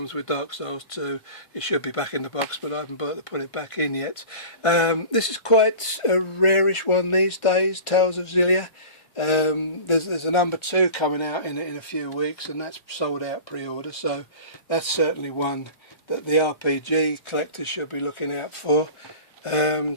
with Dark Souls 2. It should be back in the box, but I haven't bothered to put it back in yet. This is quite a rarish one these days, Tales of Xillia. There's a number 2 coming out in a few weeks, and that's sold out pre-order, so that's certainly one that the RPG collectors should be looking out for.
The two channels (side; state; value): right; late; 1.5 ms